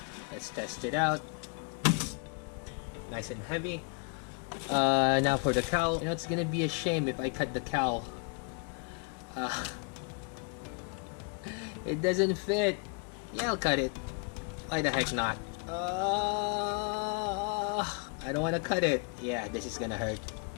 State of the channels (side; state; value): right; quieter; 36.0 dB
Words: Let's test it out. Nice and heavy. Now for the cowl. You know, it's gonna be a shame if I cut the cowl. It doesn't fit. Yeah, I'll cut it. Why the heck not? I don't want to cut it. Yeah, this is gonna hurt.